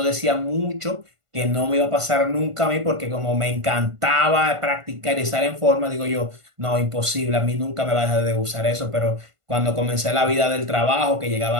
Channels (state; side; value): late; left; 1.5 ms